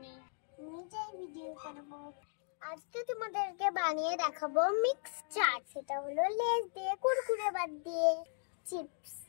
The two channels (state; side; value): silent; right; digital silence